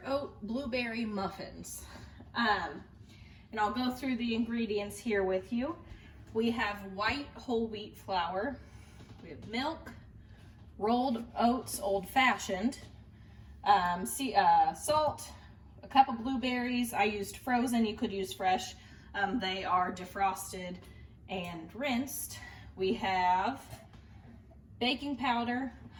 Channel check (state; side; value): identical; both; correlation 1.00